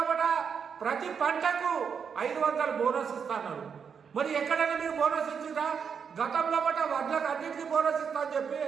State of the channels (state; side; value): quieter; left; 6.7 dB